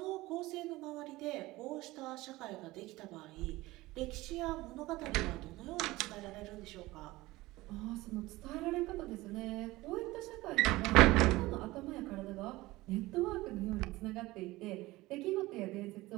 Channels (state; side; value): quieter; left; 19.3 dB